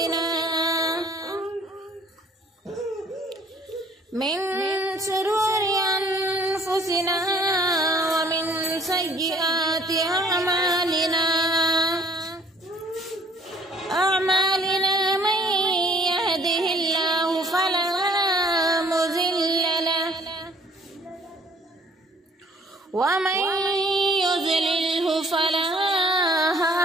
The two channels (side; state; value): both; normal; correlation 0.58